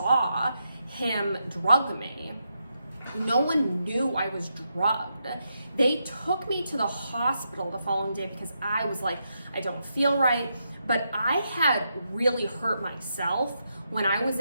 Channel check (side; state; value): both; inverted; correlation -0.83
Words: him drug me. No one knew I was drugged. They took me to the hospital the following day because I was like, I don't feel right. But I had really hurt myself when I was